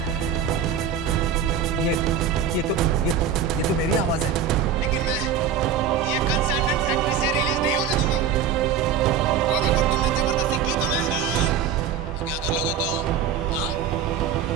ये तो मेरी आवाज है। लेकिन मैं ये कंसाइनमेंट फैक्ट्री से रिलीज नहीं होने दूंगा। और अगर तुमने जबरदस्ती की तो क्या कर लोगे तुम? हाँ?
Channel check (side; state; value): left; quieter; 7.3 dB